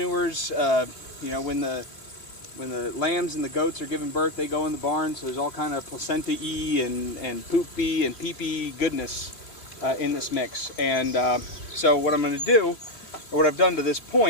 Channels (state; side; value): late; right; 3.4 ms